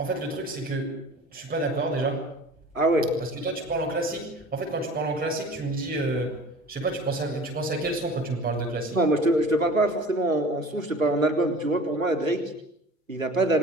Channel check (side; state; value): both; normal; correlation 0.43